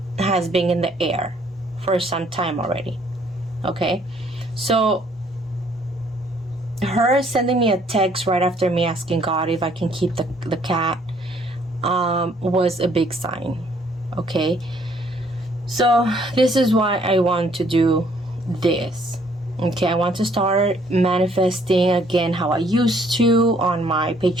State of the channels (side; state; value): both; normal; correlation 0.64